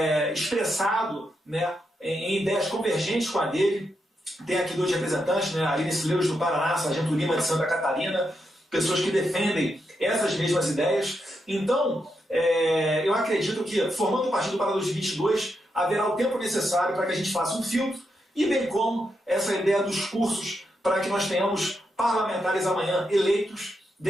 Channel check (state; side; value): normal; both; correlation 0.84